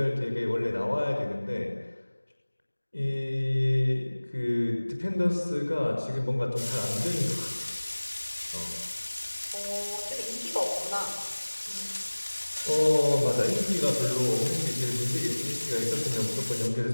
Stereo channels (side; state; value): both; inverted; correlation -1.00